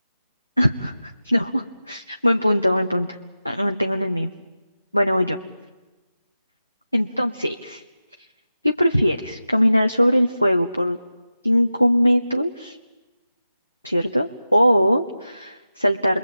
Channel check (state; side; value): inverted; both; correlation -0.94